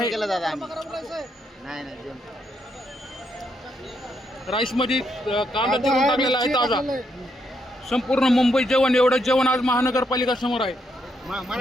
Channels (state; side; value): normal; both; correlation 0.77